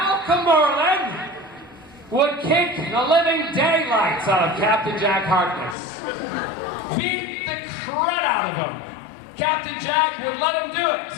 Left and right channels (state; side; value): drops out; right; at 5.8 s